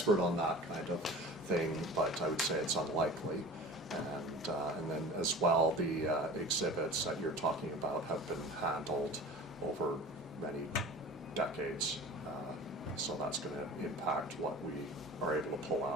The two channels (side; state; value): both; normal; correlation 0.38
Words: on that kind of thing, but I would say it's unlikely. And then as well, the exhibits that you're talking about have been handled over many decades. So that's going to impact what we are able to pull